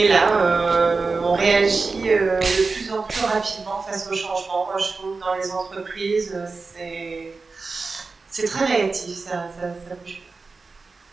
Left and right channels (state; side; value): quieter; left; 4.2 dB